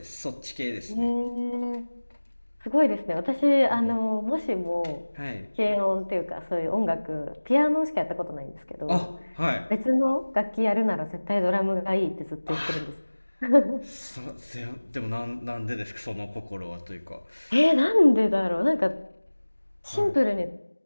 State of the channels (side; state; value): both; inverted; correlation -1.00